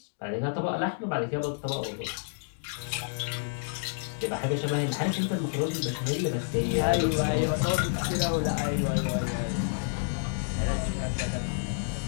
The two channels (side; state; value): right; silent; digital silence